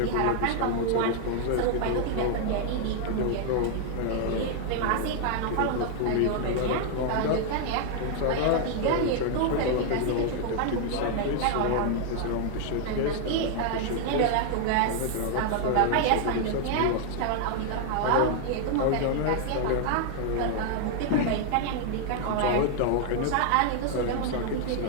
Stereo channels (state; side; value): different; both; correlation 0.00